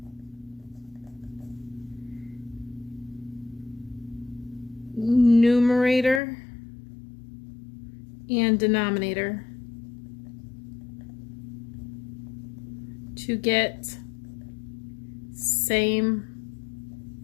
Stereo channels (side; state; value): right; drops out; at 6.2 s